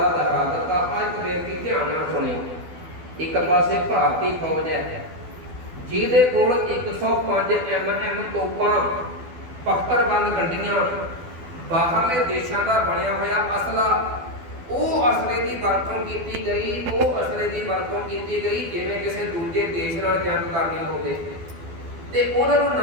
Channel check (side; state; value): left; late; 12 ms